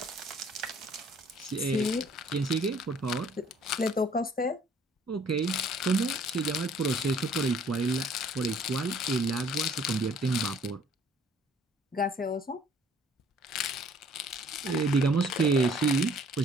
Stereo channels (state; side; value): normal; both; correlation 0.57